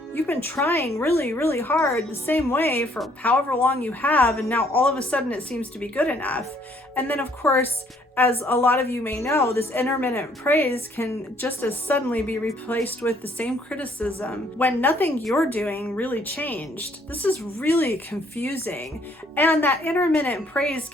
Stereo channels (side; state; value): both; normal; correlation 0.64